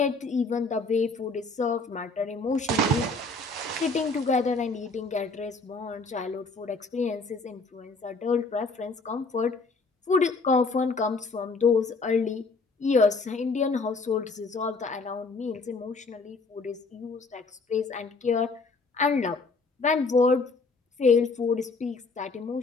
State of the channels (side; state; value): right; quieter; 3.7 dB